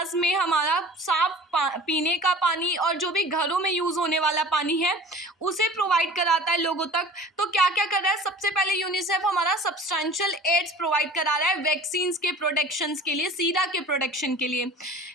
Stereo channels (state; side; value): normal; both; correlation 0.43